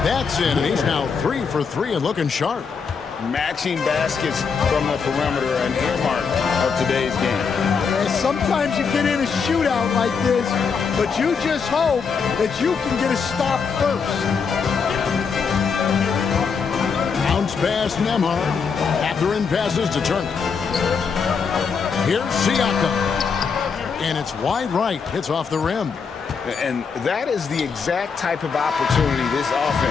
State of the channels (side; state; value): right; quieter; 5.8 dB